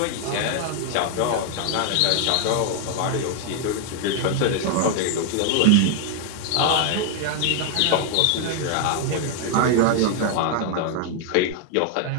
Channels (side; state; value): both; different; correlation 0.00